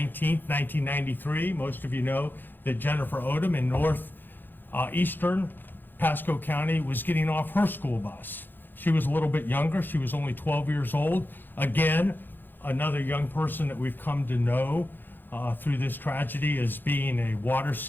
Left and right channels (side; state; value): right; late; 0.093 ms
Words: 1993, most of you know that Jennifer Odom in northeastern Pasco County was getting off her school bus. She was a little bit younger. She was only 12 years old. Again, another young person that we've come to know through this tragedy as being a water